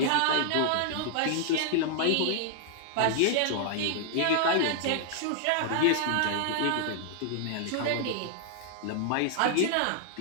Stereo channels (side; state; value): both; different; correlation -0.01